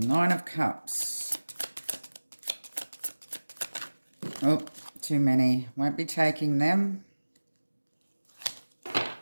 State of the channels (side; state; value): both; inverted; correlation -1.00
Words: of Cups. Oh, too many. Won't be taking them.